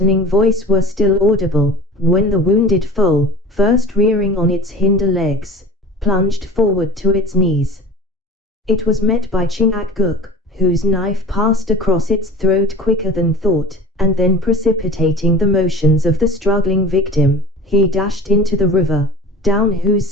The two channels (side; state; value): both; normal; correlation 0.39